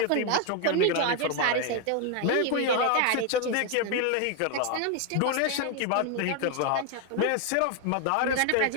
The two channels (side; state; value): both; different; correlation 0.01